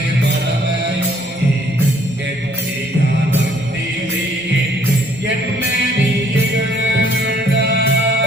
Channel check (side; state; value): both; normal; correlation 0.62